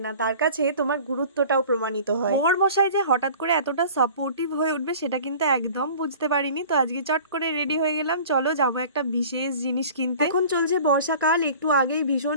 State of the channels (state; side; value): inverted; both; correlation -0.44